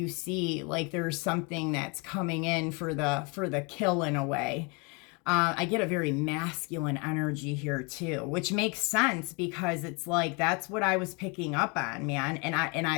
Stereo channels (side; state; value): right; quieter; 31.1 dB